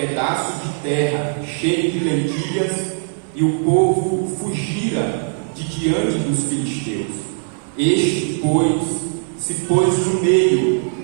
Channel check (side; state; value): left; silent; digital silence